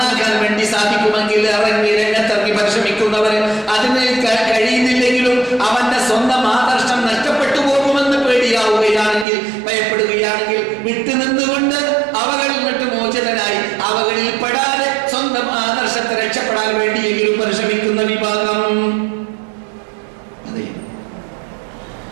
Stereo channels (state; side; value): drops out; left; at 9.2 s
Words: വേണ്ടി സാധിക്കുമെങ്കിൽ ഇറങ്ങി രംഗത്തിറങ്ങി പരിശ്രമിക്കുന്നവർ, അതിന് കഴിയുന്നില്ലെങ്കിലും അവന്റെ സ്വന്തം ആദർശം നഷ്ടപ്പെട്ടു പോകുമെന്ന് പേടിയാവുകയാണെങ്കിൽ, ഭയപ്പെടുകയാണെങ്കിൽ വിട്ടുനിന്നുകൊണ്ട് അവകളിൽ നിന്നിട്ട് മോചിതനായി അവകളിൽ പെടാതെ സ്വന്തം ആദർശത്തെ രക്ഷപ്പെടാൻ വേണ്ടിയെങ്കിലും പരിശ്രമിക്കുന്ന വിഭാഗം. അതെ